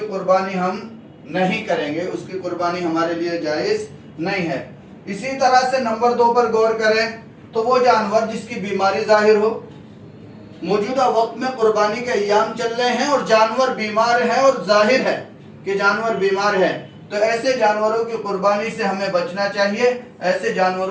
قربانی ہم نہیں کریں گے، اس کی قربانی ہمارے لیے جائز نہیں ہے۔ اسی طرح سے نمبر 2 پر غور کریں تو وہ جانور جس کی بیماری ظاہر ہو۔ موجودہ وقت میں قربانی کے ایام چل رہے ہیں اور جانور بیمار ہے اور ظاہر ہے کہ جانور بیمار ہے، تو ایسے جانوروں کی قربانی سے ہمیں بچنا چاہیے، ایسے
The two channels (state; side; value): identical; both; correlation 1.00